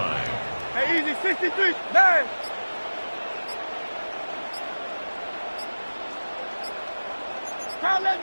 Hey, easy. 63. 9. Call up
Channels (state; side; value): inverted; both; correlation -1.00